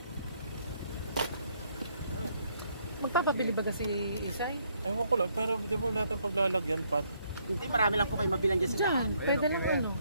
Magpapabili ba kasi Isay? Ewan ko lang, pero di mo natin paglalagyan, Pat. Hindi, marami lang po kayo mabilan dyan sa daan. Diyan, pwede lang ano.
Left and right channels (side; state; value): both; inverted; correlation -0.70